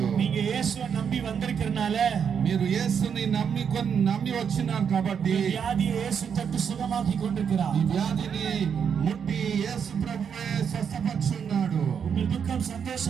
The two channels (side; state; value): left; quieter; 7.3 dB